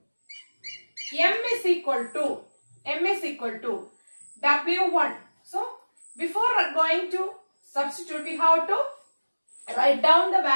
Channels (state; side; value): inverted; both; correlation -1.00